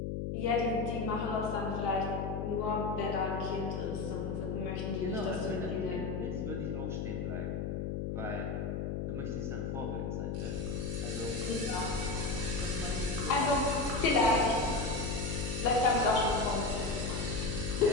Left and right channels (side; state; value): left; noise; hum, 2 dB below the sound